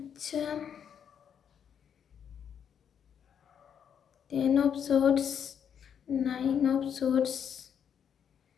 10 অফ সোর্স, 9 অফ সোর্স।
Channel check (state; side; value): quieter; right; 8.1 dB